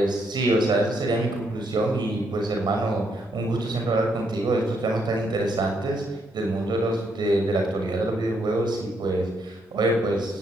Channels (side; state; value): both; normal; correlation 0.75